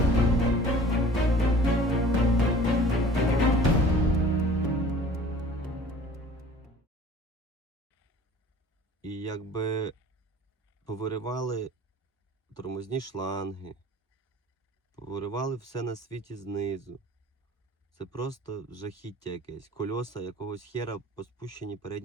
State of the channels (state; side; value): normal; both; correlation 0.47